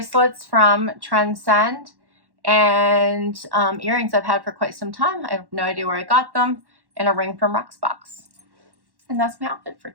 from Trendsend and earrings I've had for quite some time. I have no idea where I got them, and a ring from Rocksbox. And that's my outfit for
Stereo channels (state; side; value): late; left; 1.1 ms